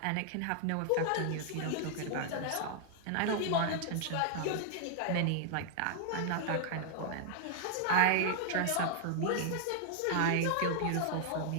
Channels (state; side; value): different; both; correlation 0.00